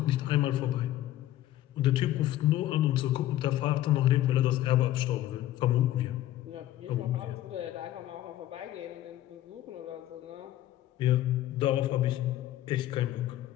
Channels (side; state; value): right; quieter; 13.9 dB